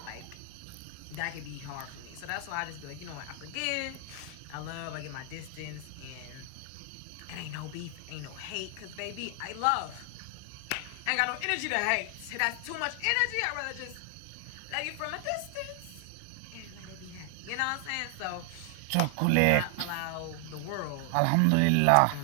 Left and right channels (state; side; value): different; both; correlation 0.00